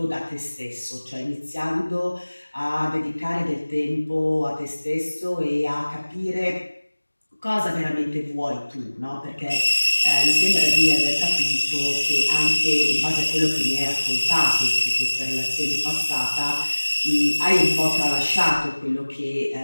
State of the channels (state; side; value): inverted; both; correlation -1.00